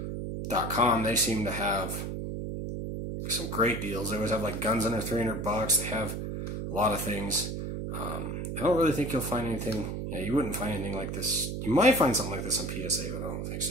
They seem to have some great deals. They always have like guns under $300. They have a lot of things. I don't really think you'll find anything. Yeah, you wouldn't find anything like this. You might find something like this on PSA, but I don't think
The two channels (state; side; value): noise; right; hum, 4 dB below the sound